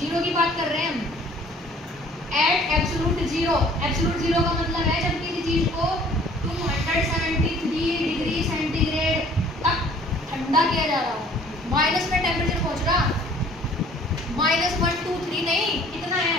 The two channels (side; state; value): both; normal; correlation 0.54